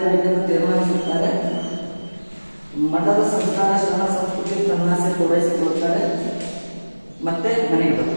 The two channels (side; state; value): both; inverted; correlation -1.00